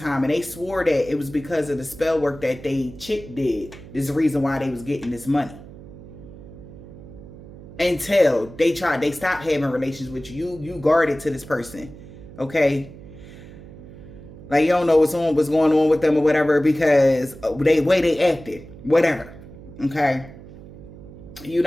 and they swore that it was because of the spell work that they chick did. This is the reason why they was getting this money. Until they stopped having relations with you. You guarded to this person. Okay? Like you don't know what's going on with them or whatever because the way they acted. Whatever. Okay? You're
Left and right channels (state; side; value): noise; right; hum, 17 dB below the sound